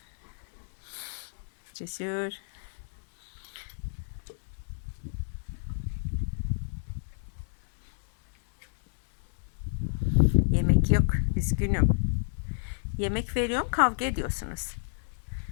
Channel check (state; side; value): silent; right; digital silence